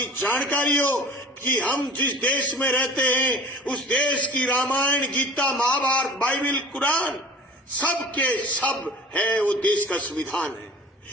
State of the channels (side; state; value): both; normal; correlation 0.42